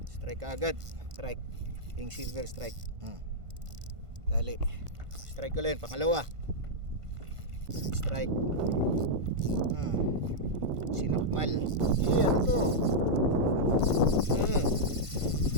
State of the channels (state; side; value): late; left; 1.5 ms